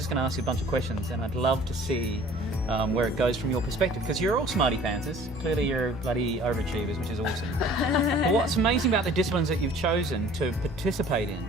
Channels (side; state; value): both; normal; correlation 0.50